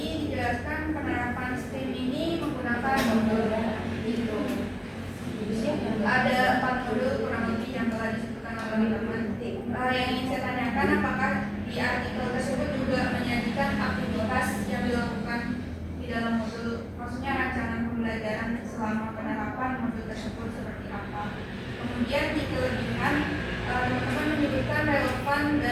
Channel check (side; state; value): both; identical; correlation 1.00